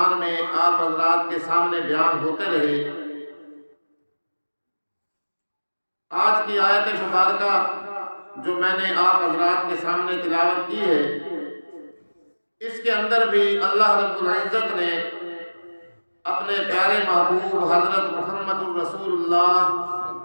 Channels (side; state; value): both; inverted; correlation -1.00